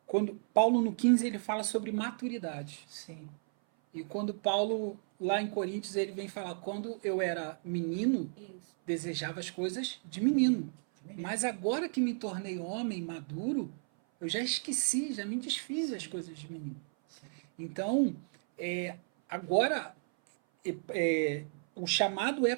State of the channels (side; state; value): left; silent; 55 dB below the other